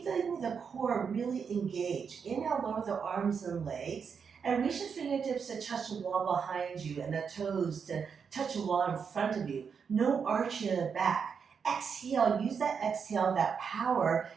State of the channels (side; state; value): left; quieter; 6.4 dB